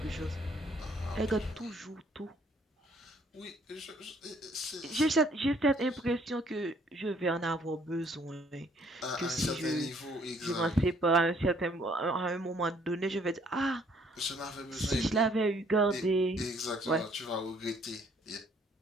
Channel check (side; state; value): both; normal; correlation 0.63